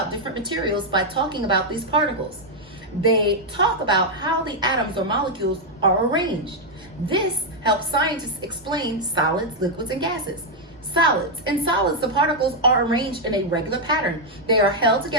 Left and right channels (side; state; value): both; normal; correlation 0.00